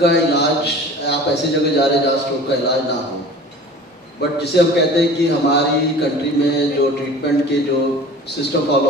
इलाज, आप ऐसी जगह जा रहे हैं जहाँ स्ट्रोक का इलाज ना हो, बट जिसे हम कहते हैं कि हमारी कंट्री में जो ट्रीटमेंट के जो सिस्टम फॉलो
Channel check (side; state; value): both; normal; correlation 0.41